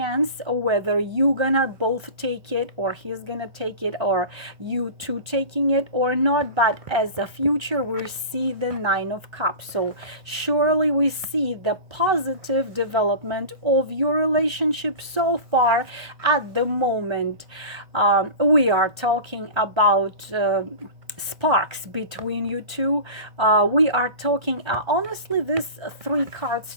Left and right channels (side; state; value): left; late; 1.3 ms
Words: whether you gonna both take it, or he's gonna take it, or you two taking it or not. But as a future, we see the Nine of Cups. So surely we see the positive development of your relationship so far at the moment. We are talking about sparks between you two. We are talking honestly, these three cards